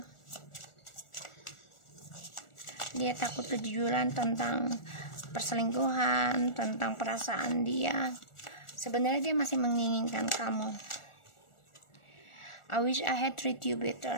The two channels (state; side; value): late; right; 1.4 ms